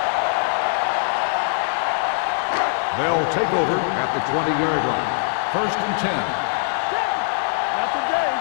They'll take over at the 20-yard line. First and 10. Not today.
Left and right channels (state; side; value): silent; right; digital silence